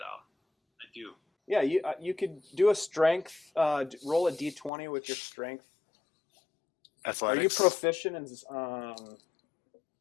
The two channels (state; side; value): drops out; right; at 4.7 s